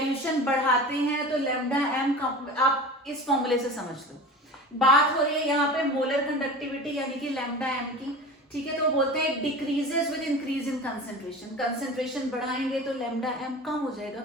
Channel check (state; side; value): normal; both; correlation 0.34